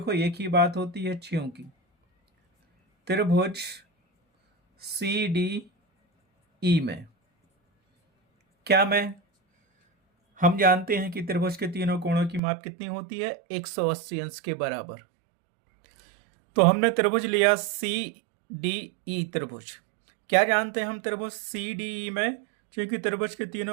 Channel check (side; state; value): left; drops out; at 12.4 s